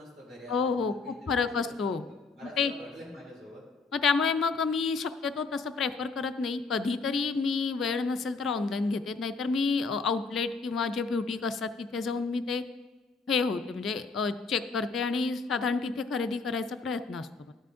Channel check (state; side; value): quieter; right; 4.4 dB